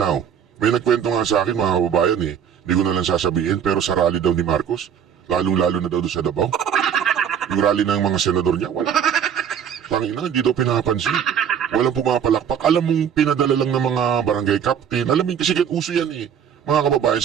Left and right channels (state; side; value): quieter; left; 8.4 dB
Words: May nagkwento nga sa akin, mga kababayan hindi ko na lang sasabihin, pero sa rally daw ni Marcos, lalong-lalo na daw doon sa Davao. Yung rally ng mga senador niya, wala. Tangina, hindi daw pinapansin. Walang pumapalakpak. Alam mong pinadala lang ng mga barangay captain. Alam mo, kasi uso yan mga kababayan,